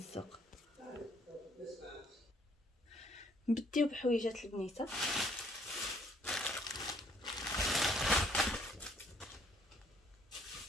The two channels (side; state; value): both; normal; correlation 0.64